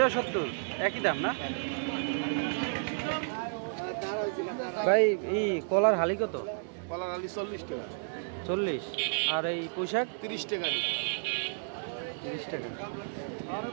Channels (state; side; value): silent; left; digital silence